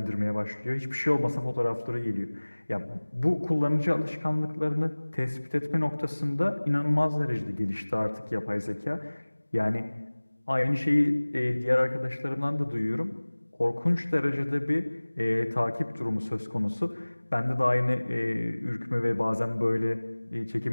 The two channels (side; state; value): both; inverted; correlation -1.00